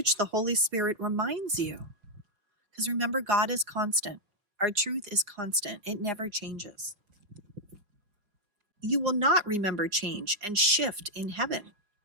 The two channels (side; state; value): left; late; 5.0 ms